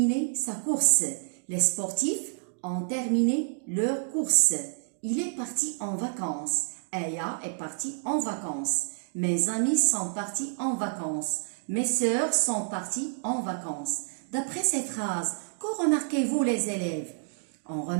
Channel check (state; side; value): silent; left; digital silence